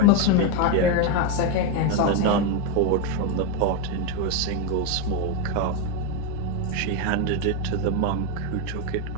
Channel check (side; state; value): both; different; correlation 0.02